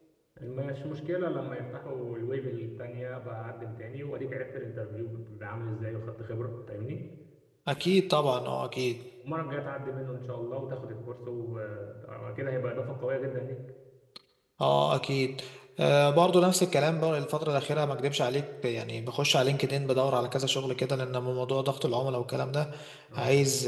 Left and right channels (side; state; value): both; identical; correlation 1.00